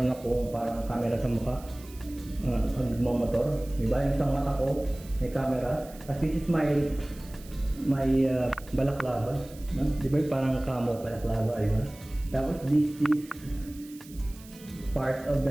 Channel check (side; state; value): right; noise; hiss, 21 dB below the sound